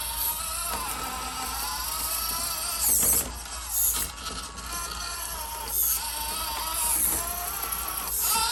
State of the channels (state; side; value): identical; both; correlation 1.00